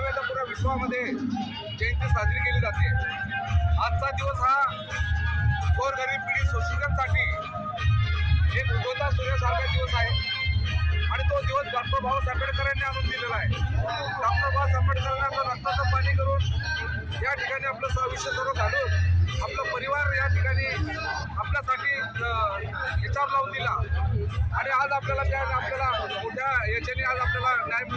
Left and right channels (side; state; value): both; identical; correlation 1.00